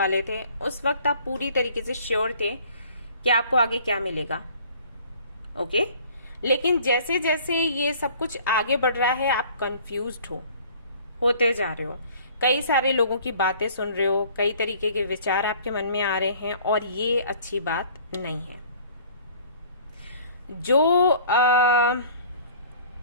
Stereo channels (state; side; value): inverted; both; correlation -0.52